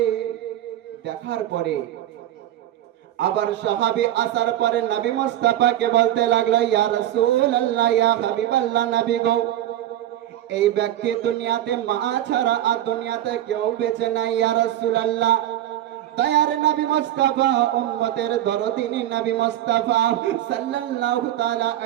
দেখার পরে আবার সাহাবী আসার পরে নবী মুস্তাফাকে বলতে লাগলো, ইয়া রাসূলুল্লাহ, ইয়া হাবিবাল্লাহ, নবী গো, এই ব্যক্তি দুনিয়াতে মা ছাড়া আর দুনিয়াতে কেউ বেঁচে নাই। ইয়া রাসূলুল্লাহ, দয়ার নবী মুস্তাফা উম্মতের দরদিনী নবী মুস্তাফা সাল্লাল্লাহু তাআলা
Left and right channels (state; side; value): quieter; left; 12.7 dB